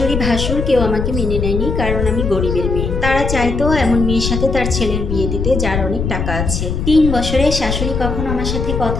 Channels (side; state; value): left; noise; rumble, 2 dB below the sound